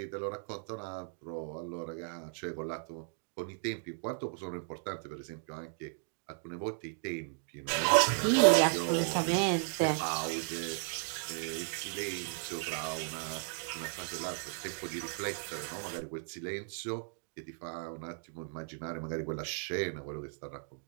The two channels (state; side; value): silent; left; 54 dB below the other